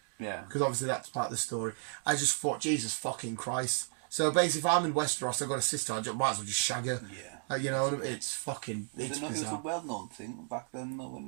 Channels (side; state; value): left; silent; 55 dB below the other